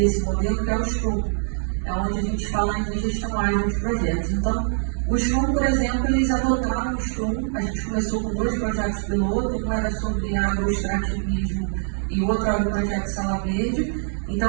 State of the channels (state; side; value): silent; left; 63 dB below the other